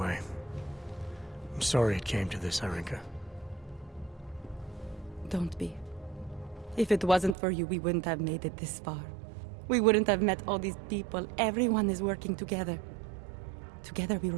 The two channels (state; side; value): drops out; left; at 7.4 s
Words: I'm sorry it came to this, Irenka. Don't be. If it wasn't for you, we wouldn't have made it this far. We wouldn't have met all these people. Everyone is working together. Together we